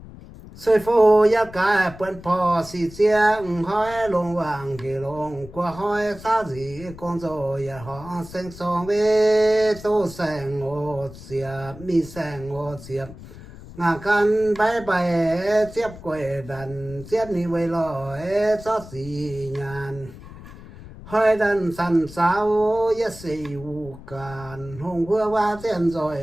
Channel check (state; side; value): noise; left; rumble, 16 dB below the sound